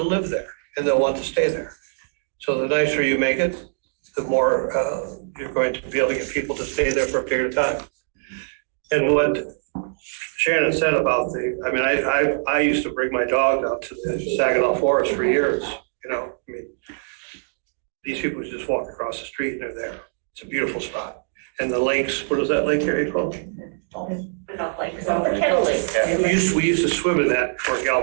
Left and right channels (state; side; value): silent; left; digital silence